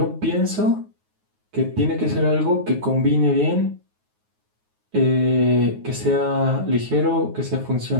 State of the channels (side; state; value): left; late; 9.4 ms